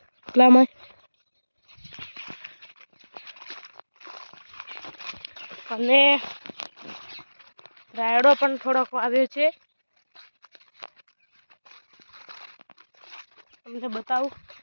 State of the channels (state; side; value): inverted; both; correlation -1.00